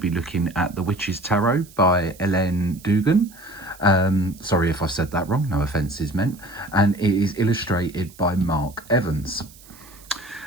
looking at The Witch's Tarot by Llewellyn. Sorry if I said that wrong, no offence is meant. And it is illustrated by Mark Evans.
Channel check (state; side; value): noise; right; hiss, 23 dB below the sound